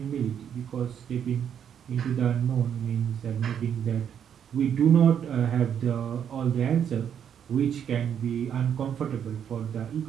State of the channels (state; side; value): quieter; left; 8.6 dB